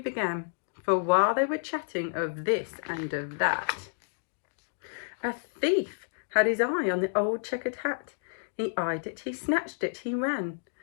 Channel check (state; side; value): silent; right; digital silence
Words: For while they were chatting of this and of that, a thief had his eye on the old checkered hat. He eyed it, he snatched it, he ran.